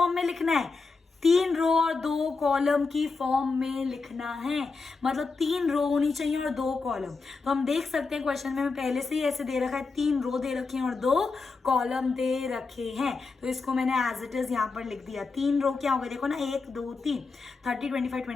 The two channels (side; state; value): right; quieter; 4.3 dB